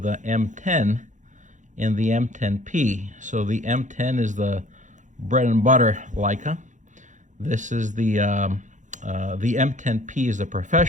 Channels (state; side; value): late; left; 0.36 ms